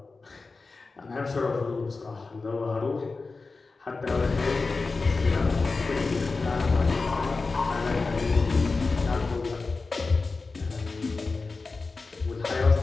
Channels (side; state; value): right; quieter; 4.0 dB